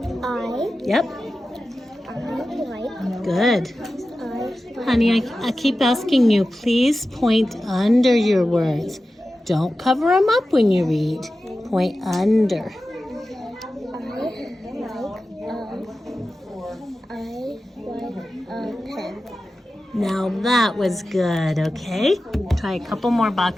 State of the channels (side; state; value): both; normal; correlation 0.94